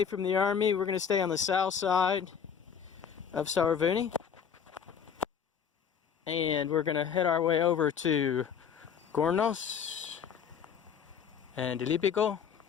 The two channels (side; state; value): right; quieter; 7.5 dB